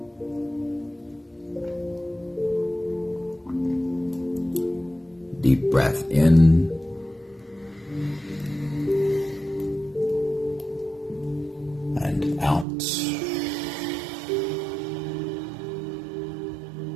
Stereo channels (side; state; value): left; drops out; at 12.7 s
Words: Deep breath in and out.